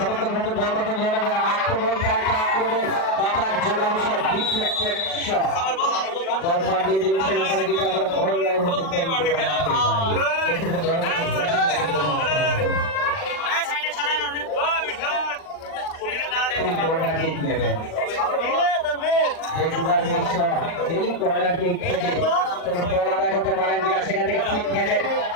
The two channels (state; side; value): late; right; 40 ms